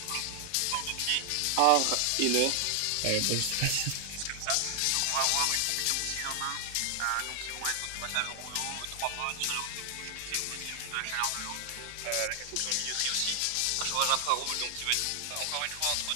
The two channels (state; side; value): different; both; correlation 0.00